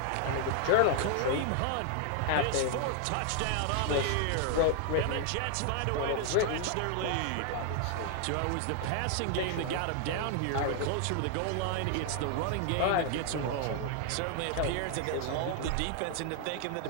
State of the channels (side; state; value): both; different; correlation 0.00